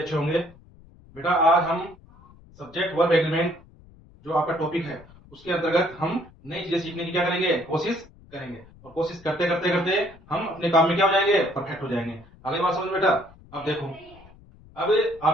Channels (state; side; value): noise; left; rumble, 24 dB below the sound